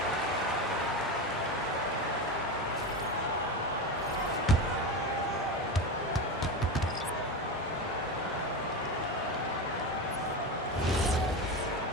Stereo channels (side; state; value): both; normal; correlation 0.20